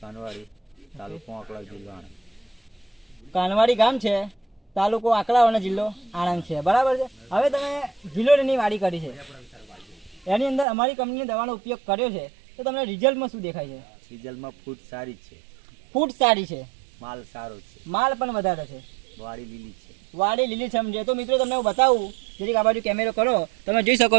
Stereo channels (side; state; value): left; drops out; at 10.7 s